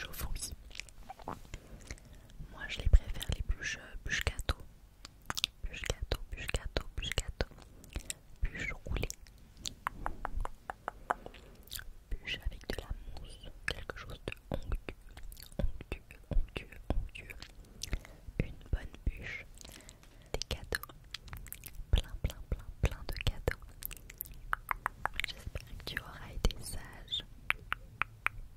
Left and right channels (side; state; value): both; identical; correlation 1.00